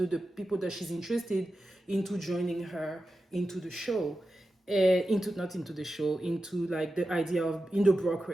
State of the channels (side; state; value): both; normal; correlation 0.92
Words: that she's interested into joining her into the show, into not into the show, into like the idea of in the